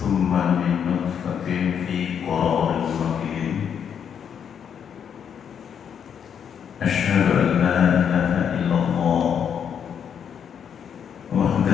min nutfatin fi qararin makin. Asyhadu an la ilaha illallah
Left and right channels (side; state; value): right; quieter; 8.0 dB